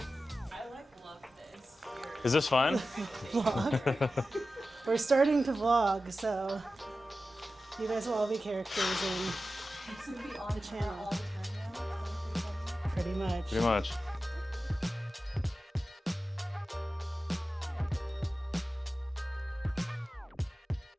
I love this. Is this fun? Vlog. We're starting to vlog, so you guys will all be characters in Be on the channel. all the time now. Pretty much. Pretty much.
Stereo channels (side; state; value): both; normal; correlation 0.94